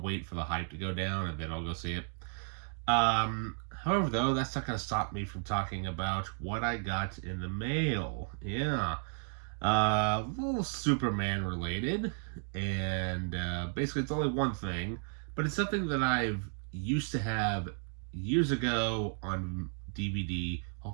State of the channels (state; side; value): silent; left; 55 dB below the other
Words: for the hype to go down and then I'll go see it. However, though, that's not gonna stop me from talking about what I got in the mail. Yeah, a little Superman related, and basically it's only one thing, but it's something that I've used to have years ago on DVD.